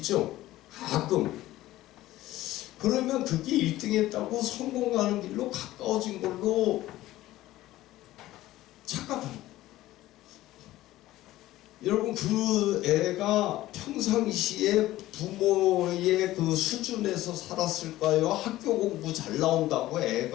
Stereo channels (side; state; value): right; quieter; 15.8 dB